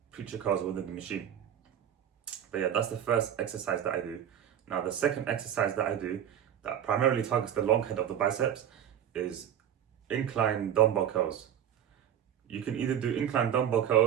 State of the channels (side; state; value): left; quieter; 9.8 dB